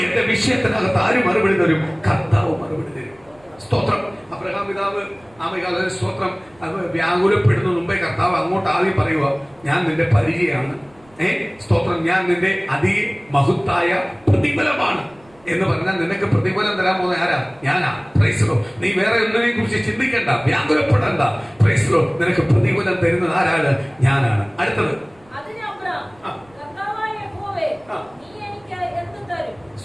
എന്റെ വിഷയത്തിനകത്ത് ആര് മറുപടി തരും? കർത്താവ് മറുപടി തരും. സ്തോത്രം. അബ്രഹാം പിതാവ് സ്തോത്രം വ്യാകുലപ്പെടുന്ന മുമ്പേ കർത്താവ് അങ്ങോട്ട് ആദ്യം പറയുക, ഞാൻ നിന്റെ പരിചയമാണ്, സ്തോത്രം, ഞാൻ നിന്റെ അതിമഹത്തായ പ്രതിഫലമാണ് എന്ന് പറഞ്ഞാൽ നിനക്ക് പ്രതിഫലം തരാൻ പോകുന്ന ആരാ? ഞാനാ. Praise Lord. നീ വേറെ ഒന്നിനെ കുറിച്ച് ചിന്തിക്കണ്ട, വ്യാകുലപ്പെടണ്ട. Praise Lord. നിനക്ക് പ്രതിഫലം തരുന്നത് ആരാണ്? ഞാനാണ്. അടുത്തത്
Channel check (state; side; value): noise; right; rumble, 29 dB below the sound